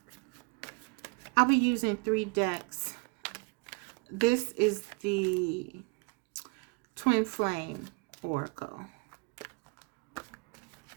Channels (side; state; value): left; quieter; 30.3 dB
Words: I'll be using 3 decks. This is the Twin Flame Oracle.